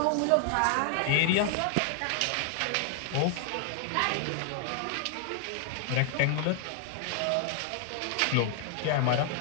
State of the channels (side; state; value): both; different; correlation 0.00